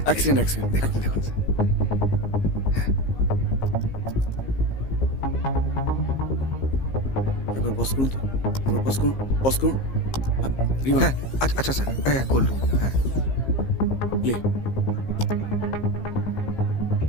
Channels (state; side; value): late; right; 15 ms